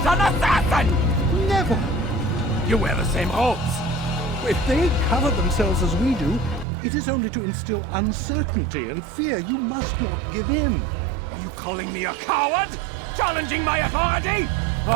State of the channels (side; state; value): left; drops out; at 6.7 s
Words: an assassin! Never! You wear the same robes. If they cover themselves as we do, it is only to instill uncertainty and fear. You must not give in. Are you calling me a coward? Challenging my authority?